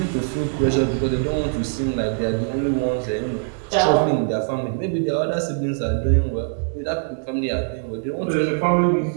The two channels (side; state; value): left; silent; digital silence